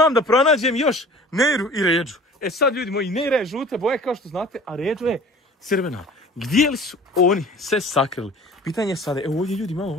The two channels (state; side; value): normal; both; correlation 0.45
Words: da pronađem još Neiru i Ređu. E sad ljudi moji, Neira je žuta boja kao što znate, a Ređa je crvena. Gdje li su oni se sakrili? Pitanje je sada, evo ovdje ljudi imamo